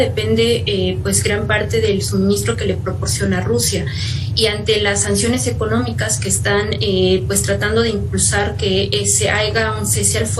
pues gran parte del suministro que le proporciona Rusia. Y ante las sanciones económicas que están pues tratando de impulsar que se haga un cese al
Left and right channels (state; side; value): identical; both; correlation 1.00